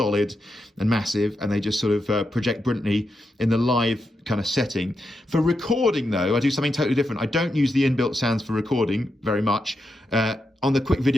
and massive, and they just sort of project brilliantly in the live kind of setting. For recording, though, I do something totally different. I don't use the inbuilt sounds for recording very much. On the quick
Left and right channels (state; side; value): normal; both; correlation 0.86